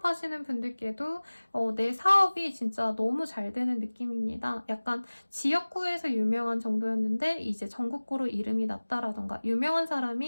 분들께도 내 사업이 진짜 너무 잘 되는 느낌입니다. 약간 지역구에서 유명한 정도였는데 이제 전국구로 이름이 났다라던가 유명한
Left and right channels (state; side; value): inverted; both; correlation -1.00